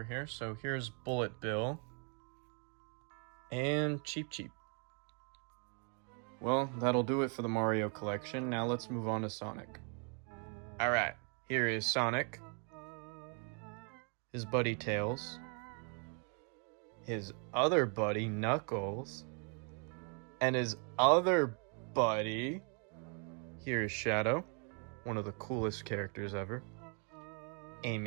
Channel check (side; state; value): left; quieter; 39.4 dB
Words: here. So here's Bullet Bill. And Cheep Cheep. Well, that'll do it for the Mario collection. Now let's move on to Sonic. Alright, here is Sonic. His buddy Tails. His other buddy Knuckles. And his other buddy... Here is Shadow, one of the coolest characters ever.